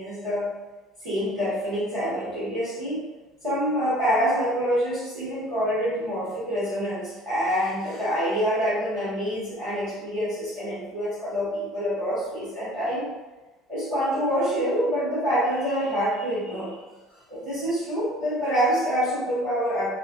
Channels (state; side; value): normal; both; correlation 0.49